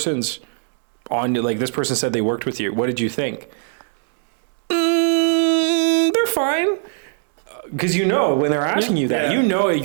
on, like, this person said they worked with you. What did you think? They're fine. Because when they're asking you that,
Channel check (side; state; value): left; silent; digital silence